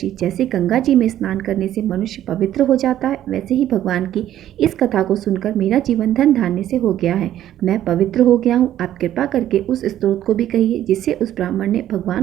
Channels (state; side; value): quieter; left; 12.1 dB